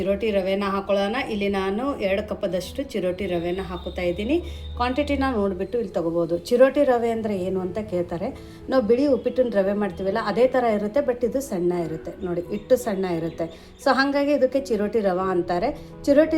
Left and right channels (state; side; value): identical; both; correlation 1.00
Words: ರವೆನ ಹಾಕೊಳ್ಳೋಣ. ಇಲ್ಲಿ ನಾನು 2 ಕಪ್ಪದಷ್ಟು ಚಿರೋಟಿ ರವೆನ ಹಾಕುತ್ತಾ ಇದ್ದೀನಿ. ಕ್ವಾಂಟಿಟಿನ ನೋಡಿಬಿಟ್ಟು ಇಲ್ಲಿ ತೊಗೋಬೋದು. ಚಿರೋಟಿ ರವೆ ಅಂದರೆ ಏನು ಅಂತ ಕೇಳ್ತಾರೆ. ನಾವು ಬಿಳಿ ಉಪ್ಪಿಟ್ಟಿನ ರವೆ ಮಾಡ್ತೀವಲ್ಲ ಅದೇ ಥರ ಇರುತ್ತೆ, ಬಟ್ ಇದು ಸಣ್ಣ ಇರುತ್ತೆ. ನೋಡಿ ಹಿಟ್ಟು ಸಣ್ಣ ಇರುತ್ತೆ. ಸೊ ಹಾಗಾಗಿ ಇದಕ್ಕೆ ಚಿರೋಟಿ ರವೆ ಅಂತಾರೆ. ಚಿರೋಟಿ